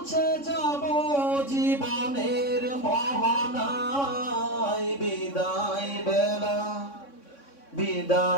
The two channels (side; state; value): right; late; 3.6 ms